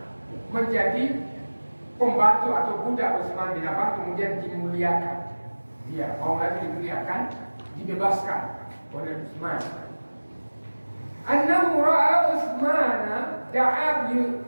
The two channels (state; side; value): inverted; both; correlation -1.00